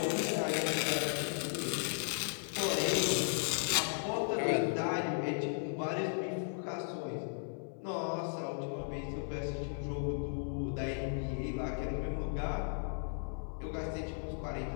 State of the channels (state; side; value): silent; right; 54 dB below the other